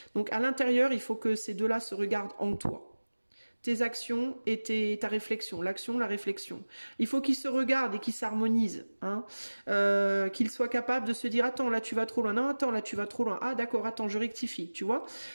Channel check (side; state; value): both; inverted; correlation -1.00